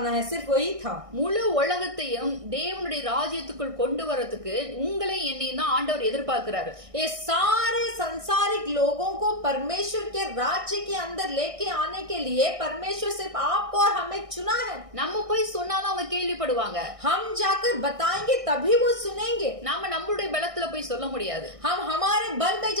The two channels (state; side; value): late; left; 1.6 ms